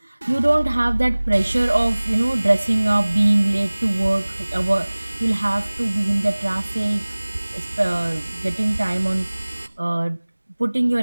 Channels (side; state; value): both; inverted; correlation -1.00